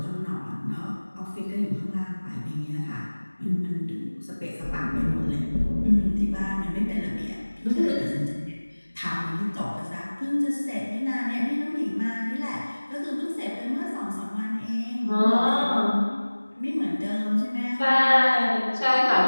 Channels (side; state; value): both; inverted; correlation -1.00